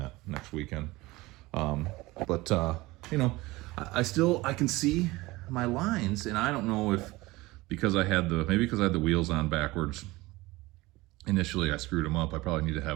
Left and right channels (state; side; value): quieter; left; 20.7 dB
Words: next weekend. You know, I can see my lines, and I don't know if because I had the wheels on backwards. Initially, I screwed them up. I probably need to